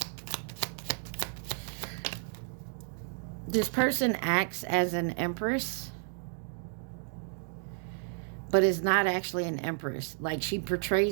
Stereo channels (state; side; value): silent; left; digital silence